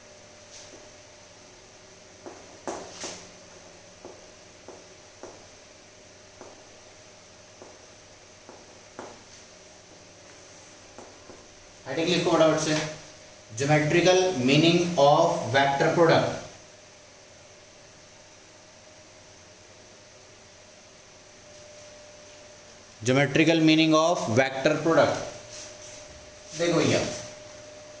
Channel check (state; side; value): identical; both; correlation 1.00